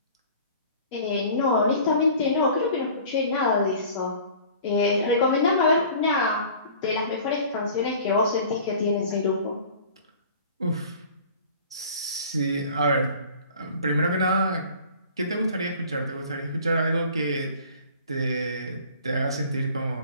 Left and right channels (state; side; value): inverted; both; correlation -0.46